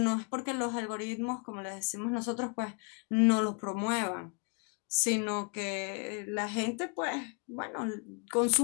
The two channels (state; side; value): quieter; right; 35.6 dB